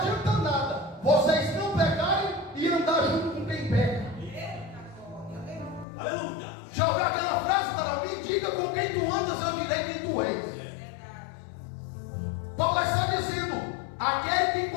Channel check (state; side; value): drops out; right; at 5.9 s